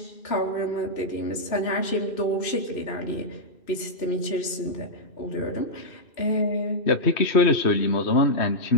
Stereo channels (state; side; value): late; right; 2.6 ms